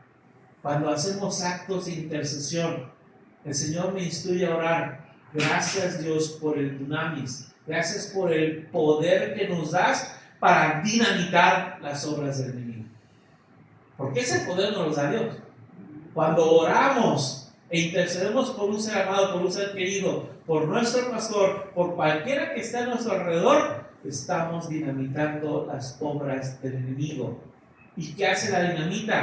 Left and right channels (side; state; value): both; identical; correlation 1.00